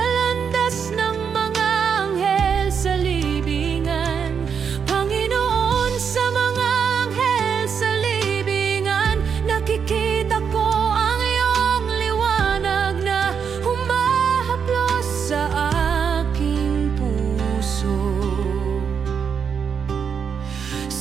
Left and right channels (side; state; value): left; quieter; 6.8 dB